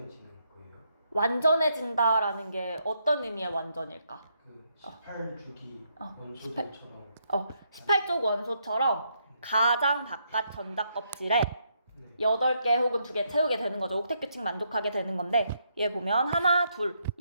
거예요? 완전해진다라는 게 어떤 의미의 완전일까? 그 18주기 원소들처럼 18쪽 원소처럼 가장 바깥 전자 껍질에 8개 혹은 2개 채우게 되는 거죠. 옥텟 규칙 만족하게 되는 건데, 얘 보면 하나, 둘,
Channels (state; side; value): inverted; both; correlation -0.77